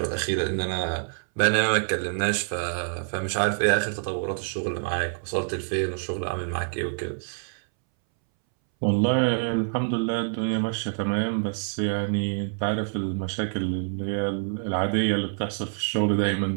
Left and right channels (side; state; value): left; silent; 61 dB below the other